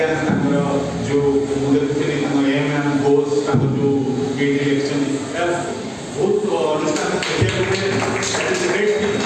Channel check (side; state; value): both; identical; correlation 1.00